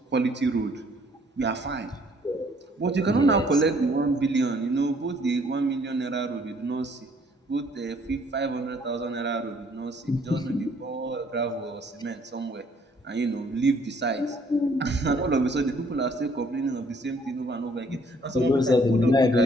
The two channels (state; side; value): normal; both; correlation 0.62